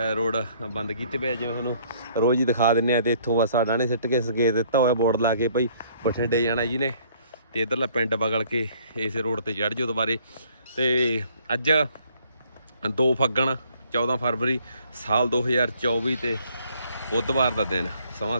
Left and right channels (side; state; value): both; inverted; correlation -0.61